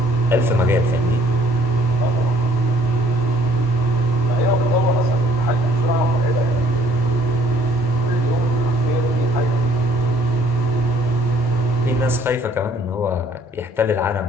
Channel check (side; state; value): both; normal; correlation 0.60